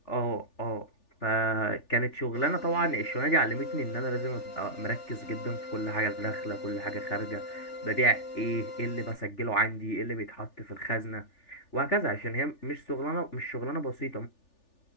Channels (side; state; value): right; late; 3.4 ms